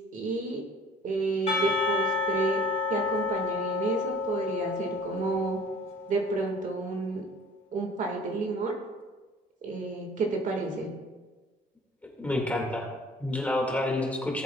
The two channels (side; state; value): both; normal; correlation 0.50